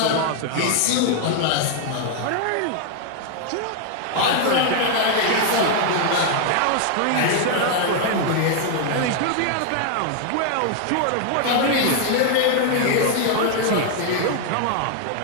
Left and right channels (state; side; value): different; both; correlation 0.00